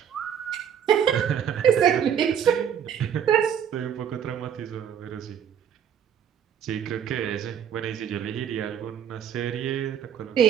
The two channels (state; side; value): quieter; left; 8.6 dB